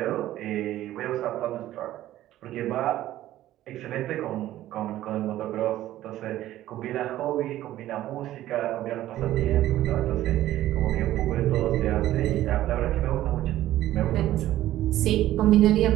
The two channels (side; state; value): left; quieter; 14.1 dB